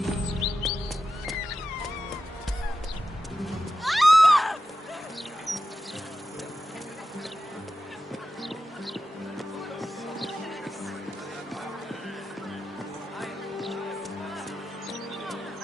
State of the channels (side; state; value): both; normal; correlation 0.91